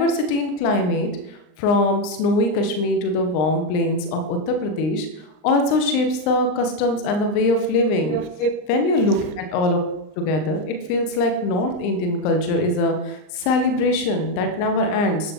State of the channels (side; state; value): right; late; 39 ms